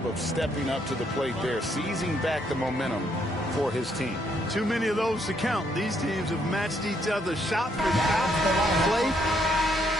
of stepping up to the plate there, seizing back the momentum for his team. Too many of those to count. These teams have matched each other shot for shot. Play.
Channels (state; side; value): normal; both; correlation 0.72